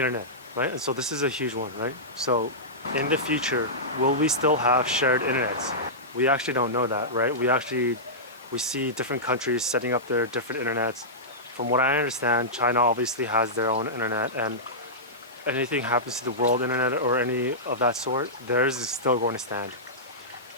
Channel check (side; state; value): both; normal; correlation -0.14